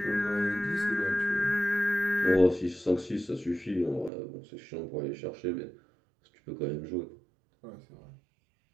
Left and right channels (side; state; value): left; drops out; at 4.1 s